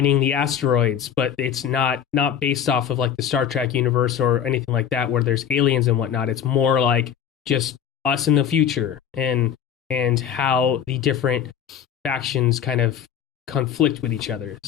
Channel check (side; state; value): right; quieter; 8.8 dB